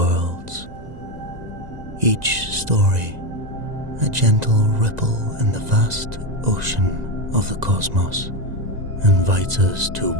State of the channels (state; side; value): late; left; 2.0 ms